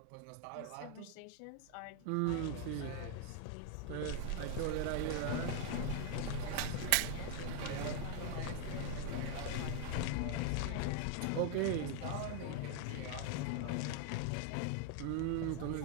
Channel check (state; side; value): different; both; correlation 0.01